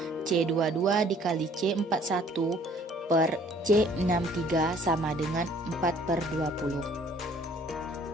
C22 dikali C41 per C63 sama dengan 4/20.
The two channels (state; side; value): normal; both; correlation 0.57